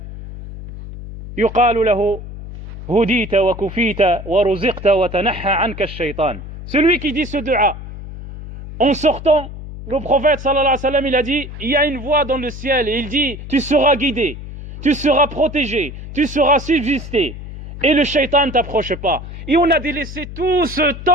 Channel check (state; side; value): noise; left; hum, 11 dB below the sound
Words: yuqalu lahu, hudita wa kufita wa ruziqta wa tanaha anka ash-shaytan. Celui qui dit ce dua, en sortant, le prophète sallallahu alayhi wa sallam, il a dit, il y a une voix dans le ciel, et il dit, tu seras guidé, tu seras protégé, tu seras subsisté, et le shaitan t'approche pas. Et on a délaissé tout ce